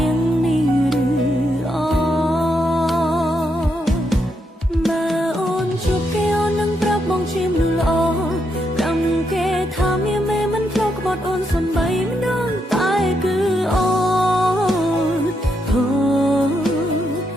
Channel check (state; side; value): normal; both; correlation 0.80